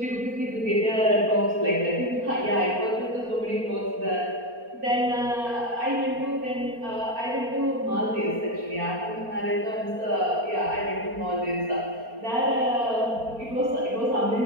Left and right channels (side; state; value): left; late; 4.3 ms